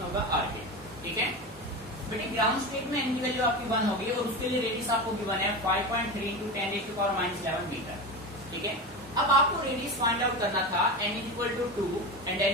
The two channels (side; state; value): both; normal; correlation 0.23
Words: होगा आर के। ठीक है बेटे, ग्राउंड स्टेट में एन की वैल्यू आपकी 1 होगी और उसके लिए रेडियस आपको गिवन है 5.3 × 10⁻⁻11 मीटर। ठीक है, अब आपको रेडियस फाइंड आउट करना था n = 2 एंड